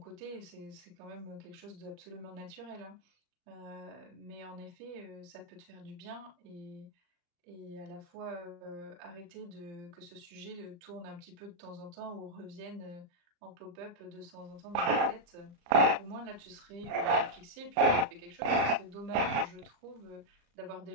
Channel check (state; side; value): late; left; 34 ms